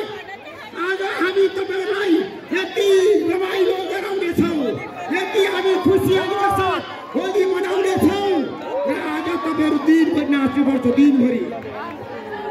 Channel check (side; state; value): both; identical; correlation 1.00